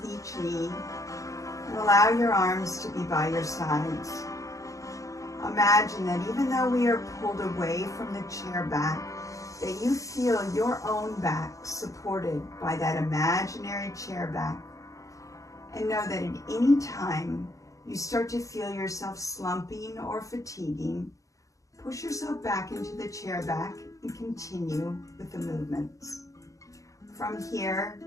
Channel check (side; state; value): right; late; 0.16 ms